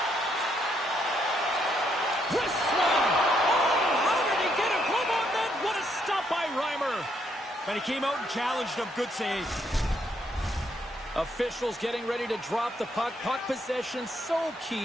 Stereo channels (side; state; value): both; normal; correlation 0.74